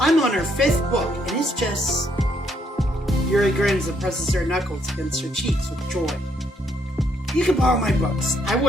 on her 5th book, and it's just... Yuri grins and presses her knuckles against her cheeks with joy. You can borrow my books. I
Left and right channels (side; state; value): both; normal; correlation 0.72